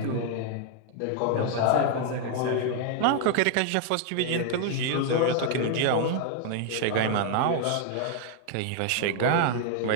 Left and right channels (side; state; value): both; different; correlation 0.00